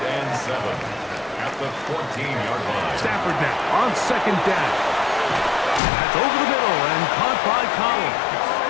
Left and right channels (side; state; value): right; drops out; at 5.8 s